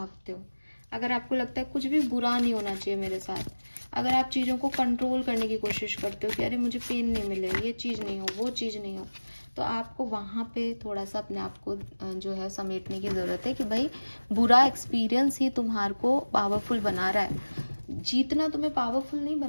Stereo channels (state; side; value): inverted; both; correlation -1.00